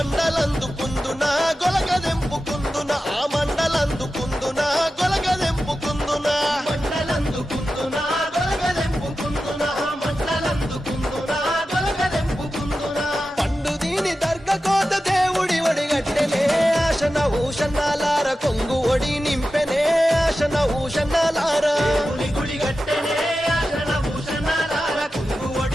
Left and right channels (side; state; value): both; normal; correlation 0.92